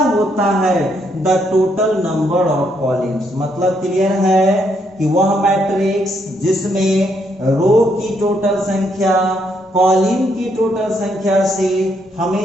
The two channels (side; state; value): both; normal; correlation 0.74